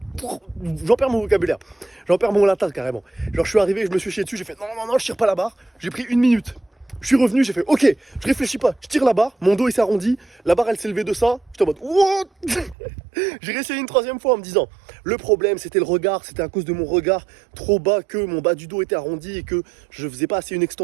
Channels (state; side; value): drops out; left; at 12.8 s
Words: J'en perds mon vocabulaire. J'en perds mon latin carrément. Genre, je suis arrivé, je me suis chié dessus, j'ai fait non, je tire pas la barre. J'ai pris 1 minute. Je suis revenu, j'ai fait ok, je réfléchis pas, je tire la barre, mon dos il s'est arrondi, la barre elle s'est levée de ça, j'étais en mode what. J'ai réessayé une 3e fois en me disant le problème c'était le regard, c'était à cause de mon regard trop bas que mon bas du dos était arrondi et que je faisais pas assez une